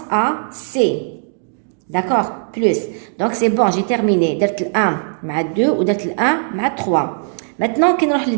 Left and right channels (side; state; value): left; silent; digital silence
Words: A, C. D'accord? Plus. Donc, c'est bon, j'ai terminé. درت le 1 مع 2 ودرت le 1 مع 3. Maintenant, كي نروح